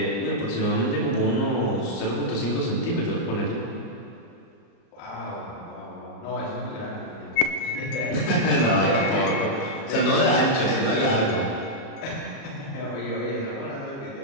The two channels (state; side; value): late; right; 37 ms